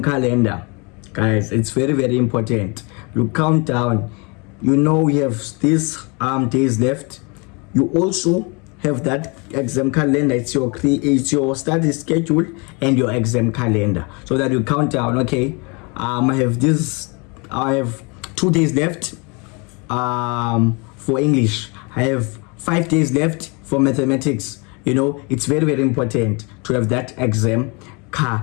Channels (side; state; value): right; quieter; 30.8 dB